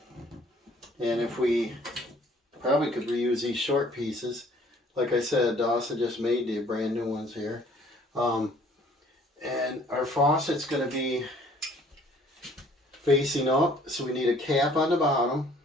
And if we probably could reuse these short pieces. Like I said, Dawson just made the brand new ones here. And our faucet's going to be facing up. So we need a cap on the bottom.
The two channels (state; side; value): normal; both; correlation 0.57